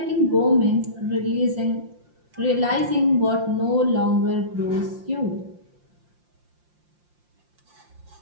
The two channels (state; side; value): late; left; 5.7 ms